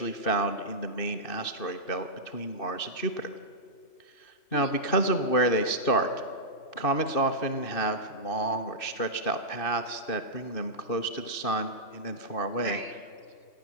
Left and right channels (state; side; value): late; right; 2.6 ms